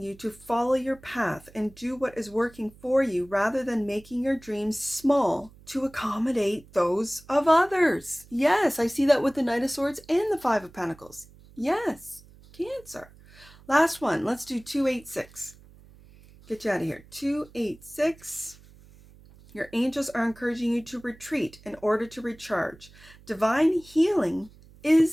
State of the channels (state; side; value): noise; right; hum, 24 dB below the sound